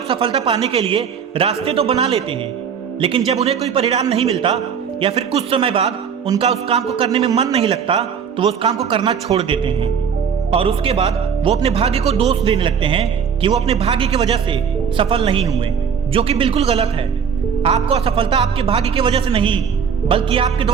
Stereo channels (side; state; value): left; quieter; 7.1 dB